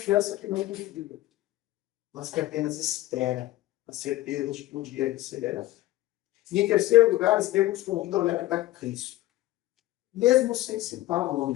que não duvida, mas que apenas espera a certeza de que um dia receberá. E em terceiro lugar, Estevão nos convida a olhar para Cristo, mesmo sem citar o nome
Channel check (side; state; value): right; quieter; 16.4 dB